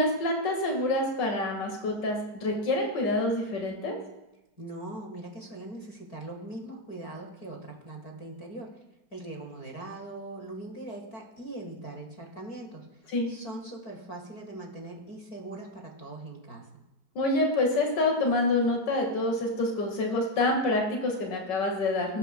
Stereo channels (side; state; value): right; late; 5.4 ms